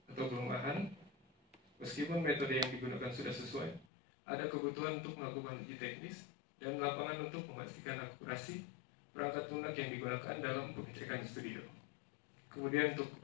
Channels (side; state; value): right; drops out; at 3.9 s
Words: atau kelemahan, meskipun metode yang digunakan sudah sesuai, ada kebutuhan untuk melakukan uji teknis dan lapangan untuk memastikan akurasi perangkat lunak yang digunakan dalam pengecekan studio. Kemudian untuk